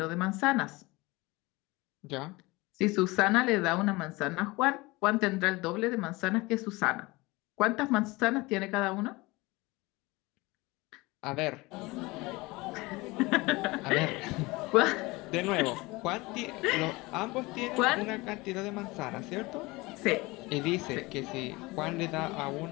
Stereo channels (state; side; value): quieter; right; 22.7 dB